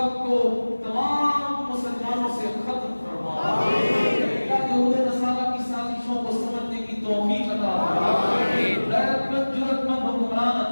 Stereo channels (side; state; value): both; inverted; correlation -1.00